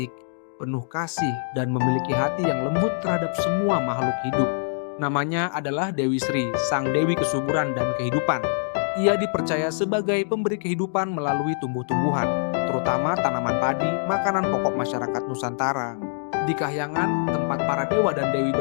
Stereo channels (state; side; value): silent; right; digital silence